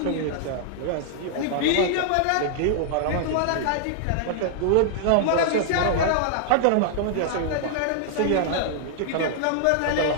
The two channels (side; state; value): both; different; correlation -0.01